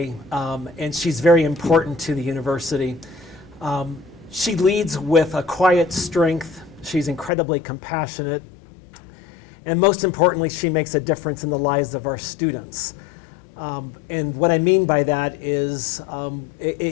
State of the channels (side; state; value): right; drops out; at 7.3 s